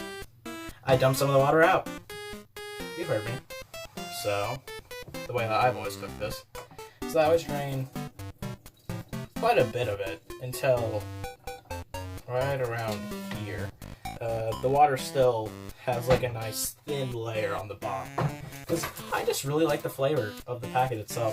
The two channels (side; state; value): both; identical; correlation 1.00